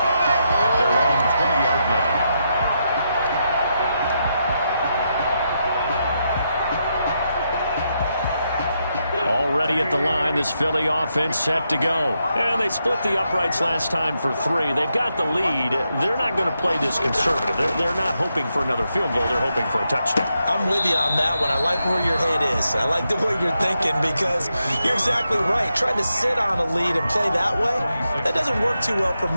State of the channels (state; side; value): inverted; both; correlation -0.83